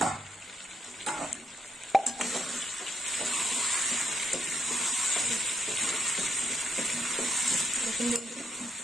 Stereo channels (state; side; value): normal; both; correlation 0.77